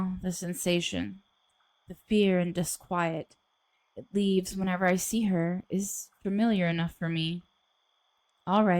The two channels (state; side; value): identical; both; correlation 1.00